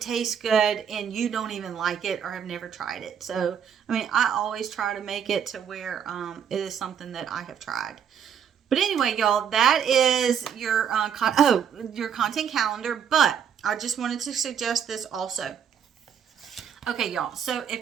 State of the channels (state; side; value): quieter; left; 8.1 dB